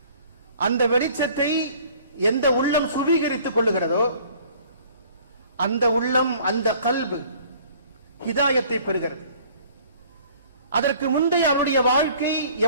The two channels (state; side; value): inverted; both; correlation -0.53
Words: அந்த வெளிச்சத்தை எந்த உள்ளம் சுவீகரித்துக் கொள்ளுகிறதோ அந்த உள்ளம், அந்த கல்பு ஹிதாயத்தை பெறுகிறது. அதற்கு முந்தைய அவருடைய வாழ்க்கை